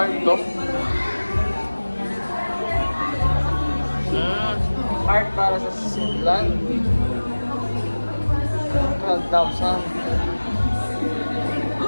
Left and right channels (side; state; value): both; inverted; correlation -1.00